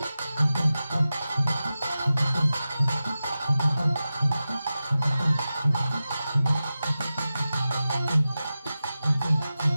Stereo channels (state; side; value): inverted; both; correlation -0.94